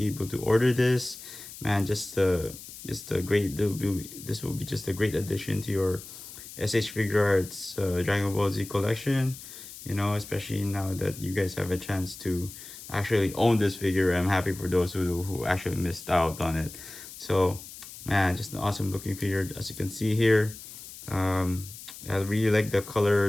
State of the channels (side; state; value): left; noise; hiss, 14 dB below the sound